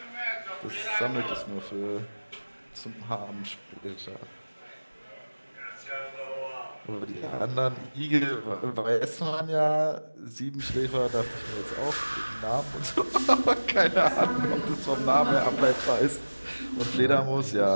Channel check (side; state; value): both; inverted; correlation -1.00